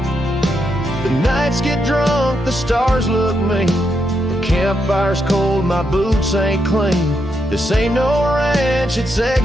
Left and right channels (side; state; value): both; normal; correlation 0.81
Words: The nights get drunk, the stars look mean. The campfire's cold, my boots ain't clean. This ain't no ranch, it's